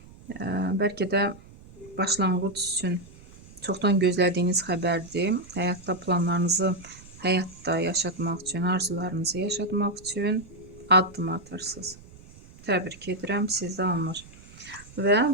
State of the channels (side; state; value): right; noise; rumble, 21 dB below the sound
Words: Bəlkə də başlanğıc üçün çoxdan gözlədiyiniz xəbərdir. Həyatda planlarınızı həyatda yaşatmaq üçün, arzularınızı yaşatmaq üçün addım atırsınız. Təbrik edirəm, sizdə alınır. Və